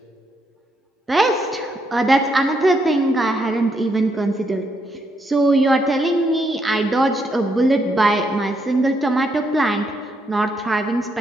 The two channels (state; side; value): normal; both; correlation 0.77